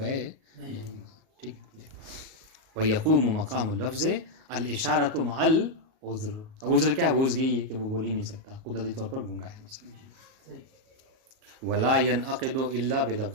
نہیں ہوگا. ٹھیک ہے. وَيَقُومُ مَقَامُ اللَّفْظِ الْإِشَارَةُ مَعَ الْعُذْرِ. عذر کیا ہے, وہ عذر یہی ہے کہ وہ بول ہی نہیں سکتا, قدرتی طور پر گنگا ہے مثلا. وَلَا يَنْعَقِدُ إِلَّا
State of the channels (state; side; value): late; left; 38 ms